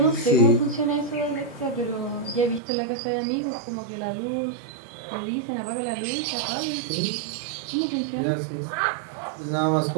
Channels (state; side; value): drops out; left; at 2.6 s